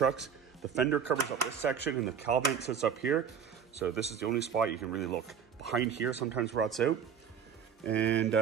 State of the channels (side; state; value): left; quieter; 7.3 dB